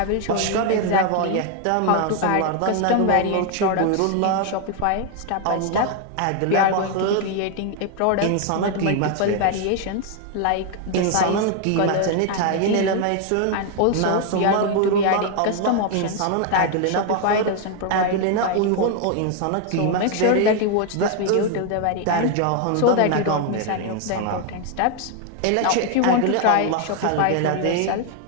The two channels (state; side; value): different; both; correlation 0.00